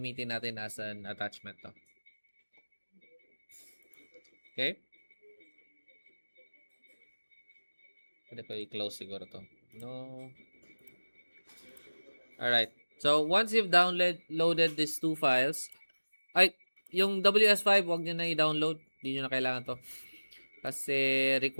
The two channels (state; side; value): inverted; both; correlation -1.00